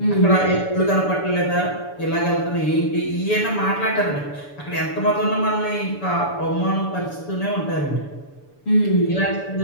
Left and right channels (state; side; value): late; right; 6.9 ms